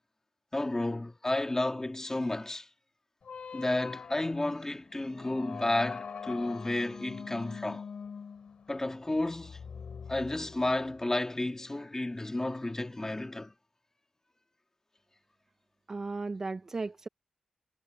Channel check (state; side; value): normal; both; correlation 0.98